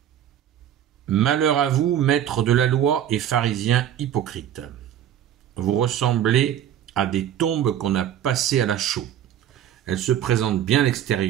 Malheur à vous, maîtres de la loi et pharisiens hypocrites. Vous ressemblez à des tombes qu'on a passées à la chaux. Elles se présentent bien à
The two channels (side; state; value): left; quieter; 10.5 dB